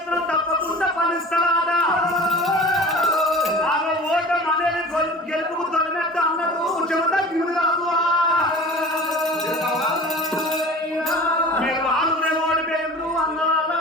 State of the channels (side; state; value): both; normal; correlation 0.40